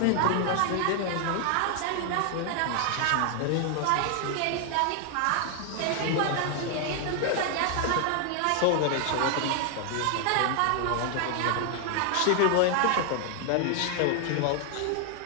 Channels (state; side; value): different; both; correlation 0.00